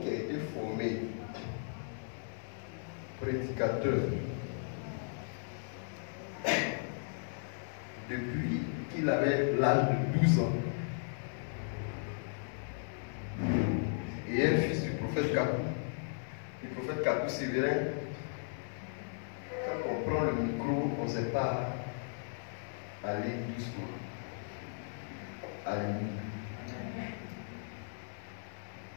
qui a été formé prédicateur depuis qu'il avait l'âge de 12 ans et un fils du prophète Kakou Sévérin. Quand on prend le micro, on ne sait pas aller doucement. Alléluia.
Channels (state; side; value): silent; right; 54 dB below the other